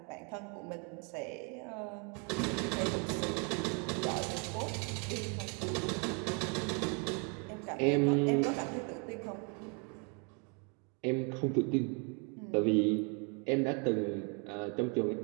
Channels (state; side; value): quieter; left; 35.6 dB